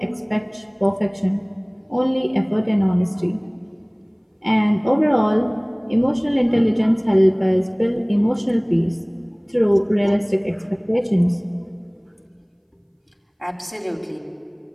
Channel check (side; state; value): both; identical; correlation 1.00